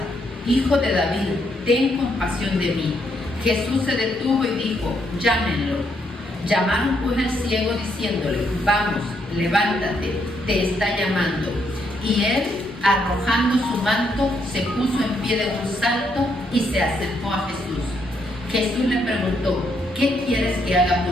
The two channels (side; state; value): both; normal; correlation 0.75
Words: Hijo de David, ten compasión de mí. Jesús se detuvo y dijo: llámenlo. Llamaron pues al ciego diciéndole: vamos, levántate, te está llamando. Y él, arrojando su manto, se puso en pie de un salto y se acercó a Jesús. Jesús le preguntó: ¿qué quieres que haga